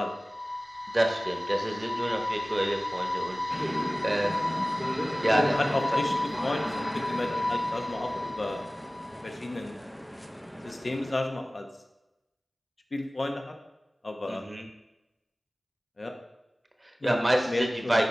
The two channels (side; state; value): both; normal; correlation 0.98